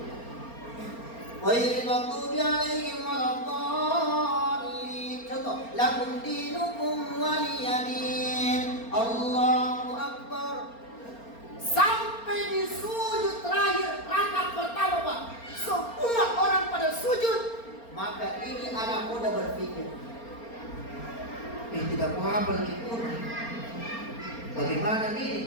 ghairil maghdubi alaihim waladdallin. Contoh, lakum dinukum waliyadin. Allahu Akbar. Sampai di sujud terakhir rakaat pertama Pak, semua orang pada sujud Maka ini anak muda berpikir, tidak mau hafal lagi Quran. Bagaimana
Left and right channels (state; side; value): late; right; 4.3 ms